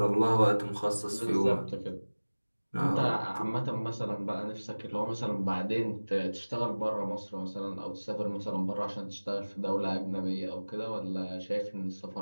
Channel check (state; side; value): inverted; both; correlation -1.00